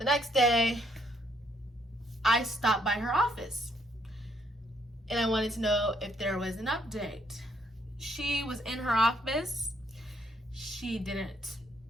next day, I stopped by her office and I wanted to know if there was an update. She was in her office. She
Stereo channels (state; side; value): normal; both; correlation 0.70